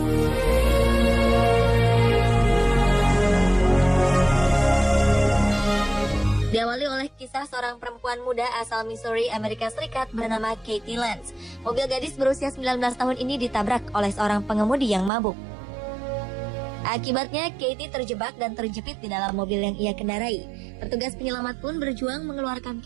Diawali oleh kisah seorang perempuan muda asal Missouri, Amerika Serikat bernama Katie Lance. Mobil gadis berusia 19 tahun ini ditabrak oleh seorang pengemudi yang mabuk. Akibatnya, Katie terjebak dan terjepit di dalam mobil yang ia kendarai. Petugas penyelamat pun berjuang mengeluarkan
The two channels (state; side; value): drops out; left; at 15.1 s